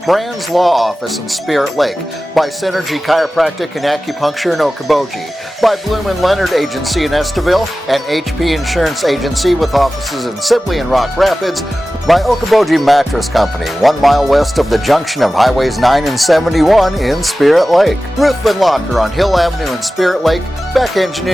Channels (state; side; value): normal; both; correlation 0.96